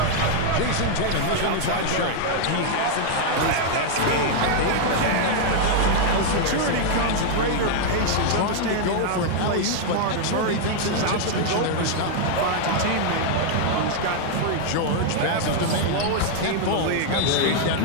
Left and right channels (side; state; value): both; different; correlation 0.00